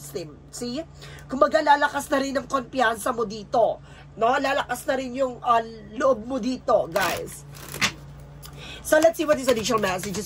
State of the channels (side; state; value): both; identical; correlation 1.00